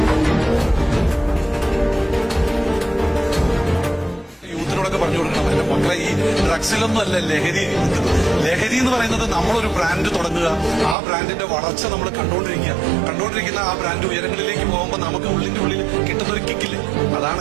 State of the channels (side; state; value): left; drops out; at 11.0 s